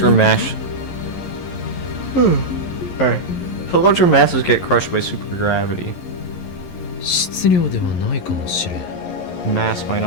mass... Alright. So larger masses get crushed by supergravity. 質量ではないかもしれん Mass might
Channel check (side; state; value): right; late; 11 ms